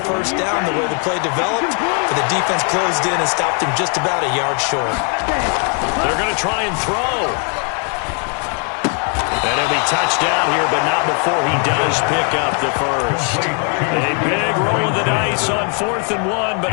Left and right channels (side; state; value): right; quieter; 39.0 dB